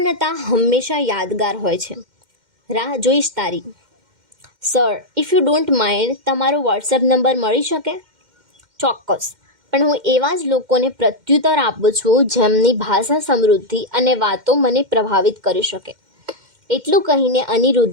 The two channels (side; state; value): left; late; 2.1 ms